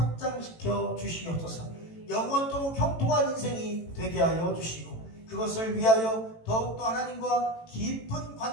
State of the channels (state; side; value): late; right; 18 ms